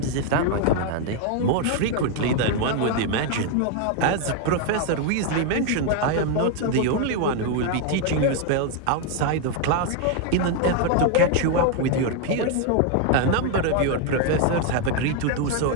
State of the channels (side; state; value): both; different; correlation 0.01